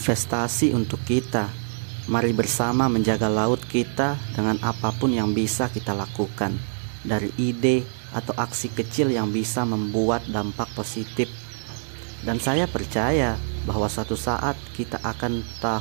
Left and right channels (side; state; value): left; silent; digital silence